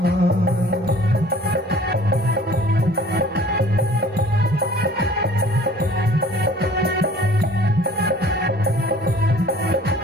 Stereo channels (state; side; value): normal; both; correlation 0.51